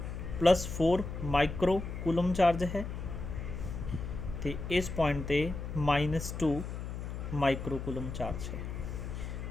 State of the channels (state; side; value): noise; left; hum, 6 dB below the sound